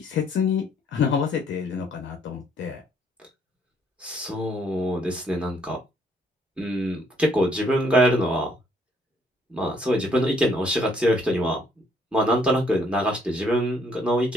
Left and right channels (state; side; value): normal; both; correlation 0.67